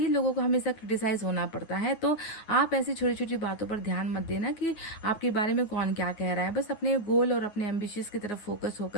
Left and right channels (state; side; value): late; right; 9.6 ms